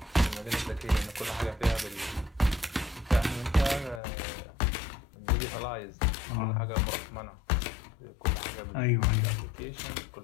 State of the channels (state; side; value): drops out; right; at 4.0 s